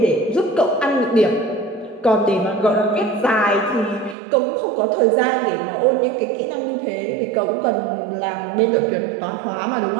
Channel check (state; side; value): drops out; left; at 4.2 s